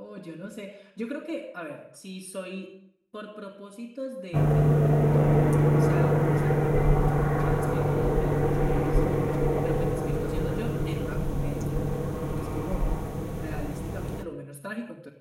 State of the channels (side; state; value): both; identical; correlation 1.00